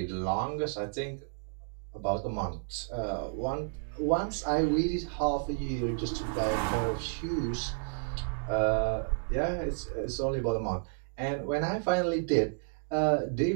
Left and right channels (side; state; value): left; silent; digital silence